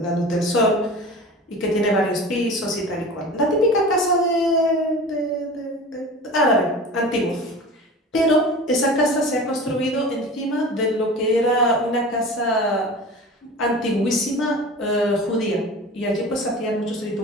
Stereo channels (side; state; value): both; normal; correlation 0.36